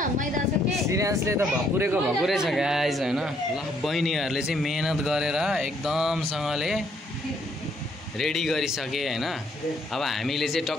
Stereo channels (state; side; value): normal; both; correlation 0.69